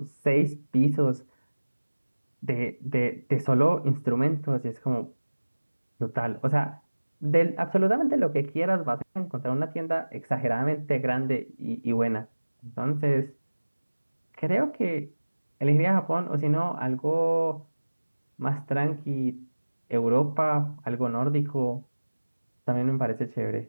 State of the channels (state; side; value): inverted; both; correlation -1.00